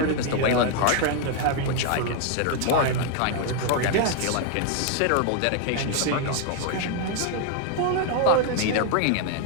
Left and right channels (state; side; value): different; both; correlation 0.00